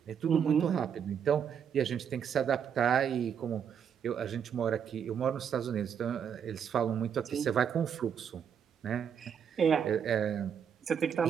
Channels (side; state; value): left; quieter; 7.9 dB